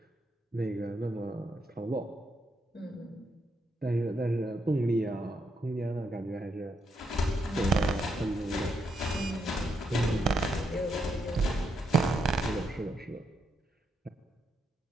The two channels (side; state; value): both; normal; correlation 0.80